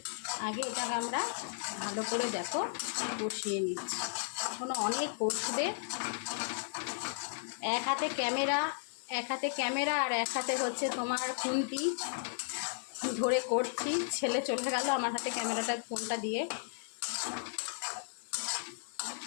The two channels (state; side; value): silent; right; digital silence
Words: আগে এটাকে আমরা ভালো করে দেখো কষিয়ে নিচ্ছি। এখনও অনেক কষবে। এক হাতে ক্যামেরা আর এক হাতে হচ্ছে তোমার খুন্তি ধরে করছি। ছেলে চলে গেল আমার হাতে ক্যামেরাটা, ফোনটা দিয়ে।